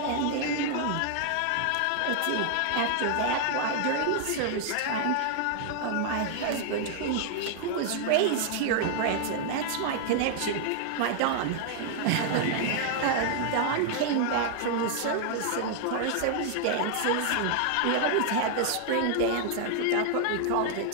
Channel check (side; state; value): both; different; correlation 0.00